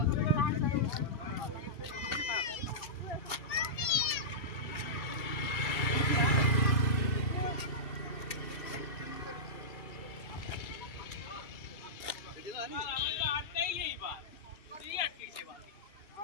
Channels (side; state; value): right; late; 2.3 ms